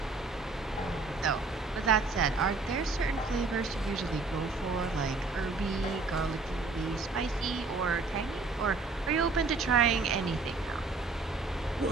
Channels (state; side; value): quieter; left; 3.9 dB